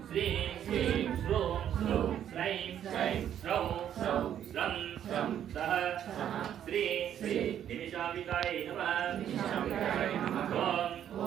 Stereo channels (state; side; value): quieter; left; 10.1 dB